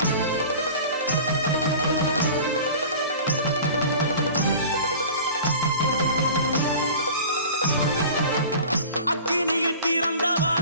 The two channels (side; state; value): both; inverted; correlation -0.39